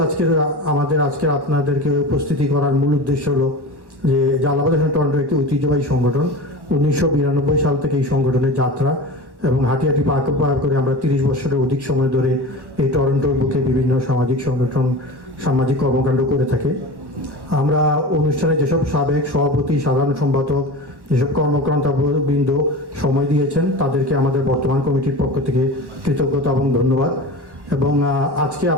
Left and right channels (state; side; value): late; left; 1.1 ms